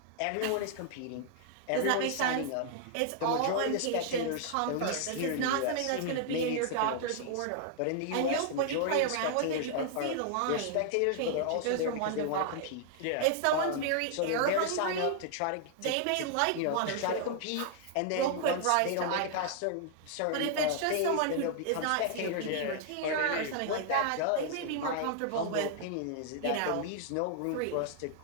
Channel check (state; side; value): different; both; correlation -0.01